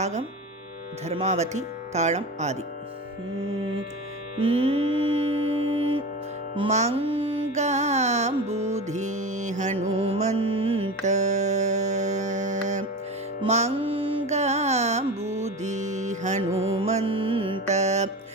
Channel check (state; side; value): normal; both; correlation 0.26